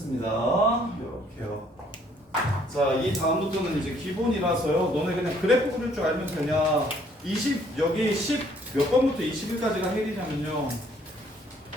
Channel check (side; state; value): both; normal; correlation 0.63